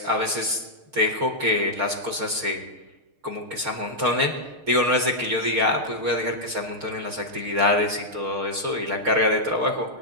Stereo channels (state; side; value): late; left; 6.5 ms